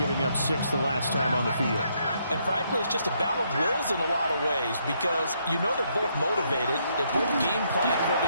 up 6 the last time on the field. And frankly, it's just a battle of wills in a lot of ways because you know they're both motivated. They both game plan for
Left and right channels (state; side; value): inverted; both; correlation -0.74